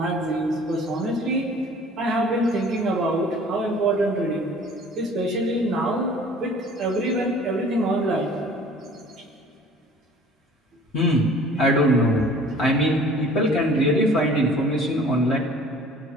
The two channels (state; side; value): normal; both; correlation 0.49